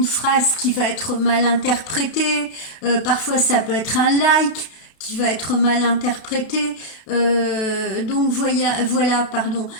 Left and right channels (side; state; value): right; late; 32 ms